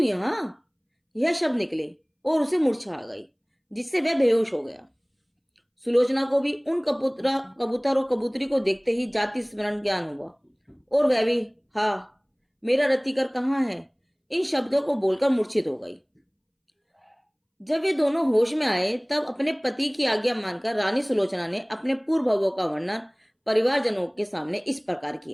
यह शब्द निकले और उसे मूर्छा आ गई, जिससे वह बेहोश हो गया। सुलोचना को भी उन कबूतर और कबूतरी को देखते ही जाति स्मरण ज्ञान हुआ और वह भी हाँ मेरा रतिकर कहाँ है, इन शब्दों को बोलकर मूर्छित हो गई। जब वे दोनों होश में आए तब अपने पति की आज्ञा मानकर रानी सुलोचना ने अपने पूर्व भवों का वर्णन परिवारजनों के सामने इस प्रकार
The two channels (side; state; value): both; identical; correlation 1.00